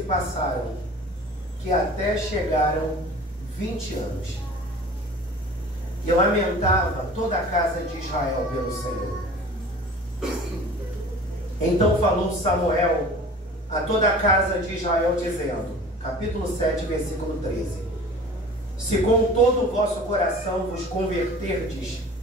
passaram que até chegaram 20 anos. E lamentava toda a casa de Israel pelo Senhor. Então falou Samuel a toda a casa de Israel, dizendo, capítulo 7, versículo 13: se com todo o vosso coração vos converterdes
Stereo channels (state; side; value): normal; both; correlation 0.42